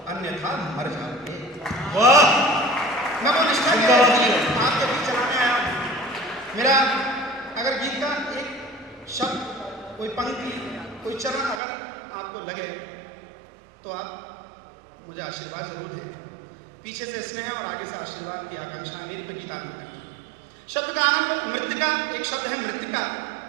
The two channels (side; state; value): left; drops out; at 11.6 s